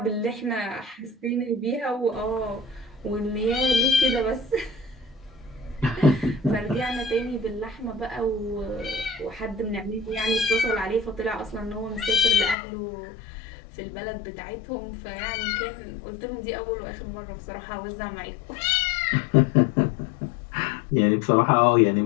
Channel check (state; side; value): drops out; right; at 12.6 s